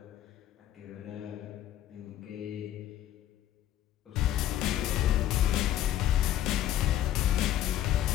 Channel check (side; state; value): right; quieter; 12.1 dB